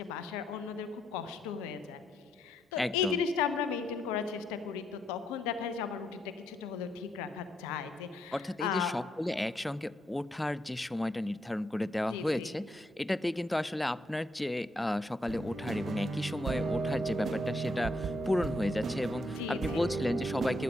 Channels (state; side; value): normal; both; correlation 0.77